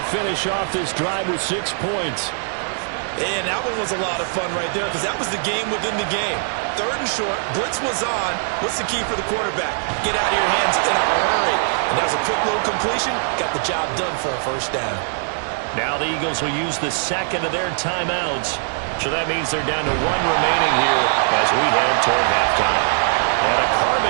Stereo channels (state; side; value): silent; left; 65 dB below the other